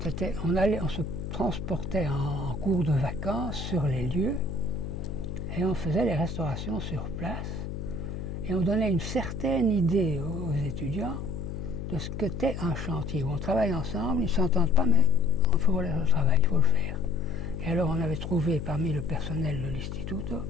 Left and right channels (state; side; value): noise; left; hum, 6 dB below the sound